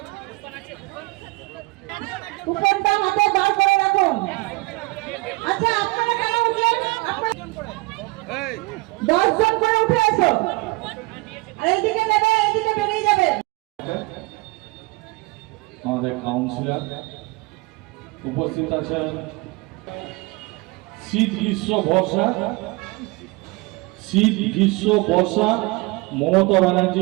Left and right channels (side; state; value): left; quieter; 24.1 dB